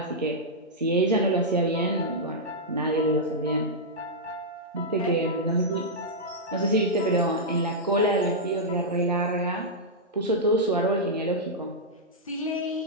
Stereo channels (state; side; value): normal; both; correlation -0.08